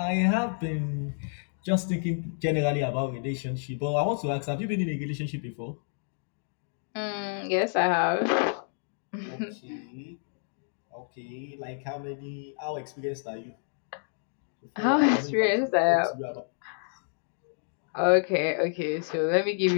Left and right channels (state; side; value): silent; right; digital silence